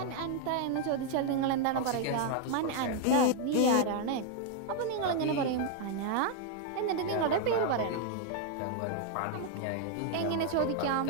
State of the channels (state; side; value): different; both; correlation 0.00